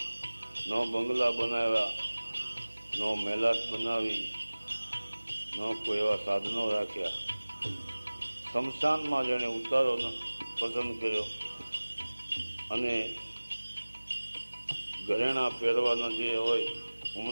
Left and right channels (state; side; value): inverted; both; correlation -1.00